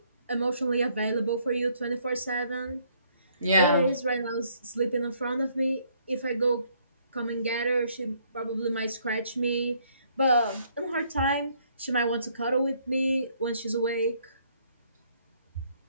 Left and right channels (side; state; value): both; inverted; correlation -0.67